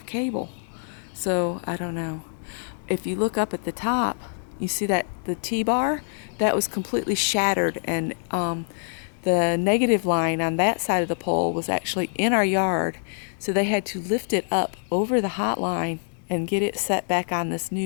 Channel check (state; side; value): silent; right; digital silence